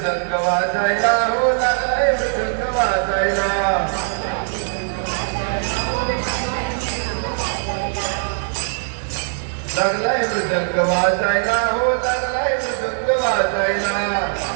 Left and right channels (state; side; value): silent; left; digital silence